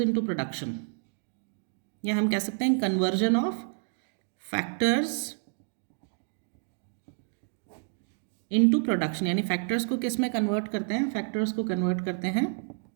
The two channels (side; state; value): left; silent; 58 dB below the other